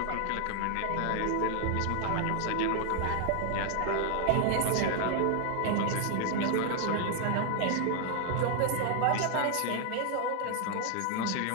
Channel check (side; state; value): both; different; correlation 0.00